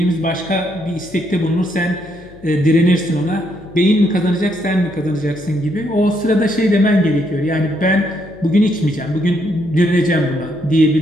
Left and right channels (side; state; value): left; noise; hum, 23 dB below the sound